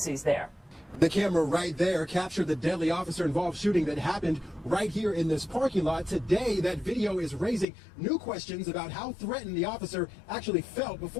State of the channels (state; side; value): drops out; right; at 7.7 s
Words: there. The camera right there captured the deadly officer-involved shooting that happened right here in this parking lot. Today, that video is raising new questions about how threatened the officer actually felt